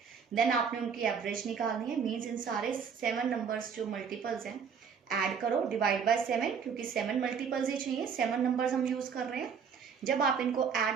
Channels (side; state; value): left; quieter; 6.6 dB